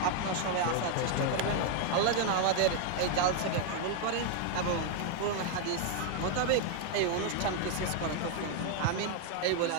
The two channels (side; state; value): both; different; correlation 0.00